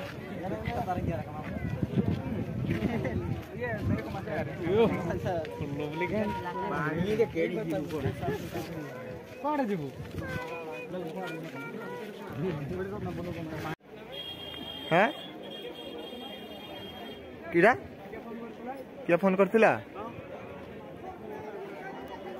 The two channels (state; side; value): identical; both; correlation 1.00